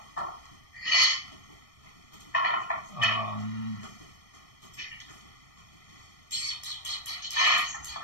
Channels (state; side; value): late; right; 1.6 ms